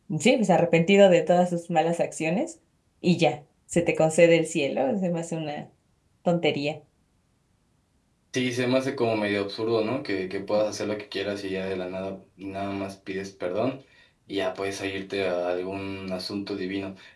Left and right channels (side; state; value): both; identical; correlation 1.00